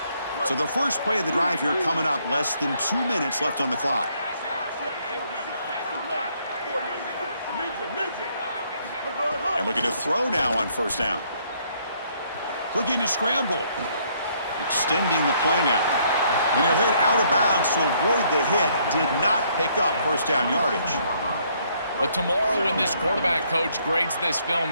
So the first play of the drive here coming up, less than 2 minutes left on the clock. And looking to throw now on first down. Looking to scramble. Extending the play now. And he'll hit out of bounds to avoid the hit. Did not pick up first down yardage. But tomorrow when this quarterback coach grades this film,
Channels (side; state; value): both; inverted; correlation -0.68